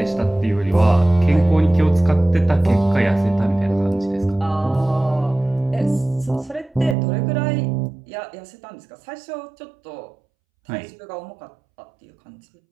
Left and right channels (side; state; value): left; drops out; at 7.0 s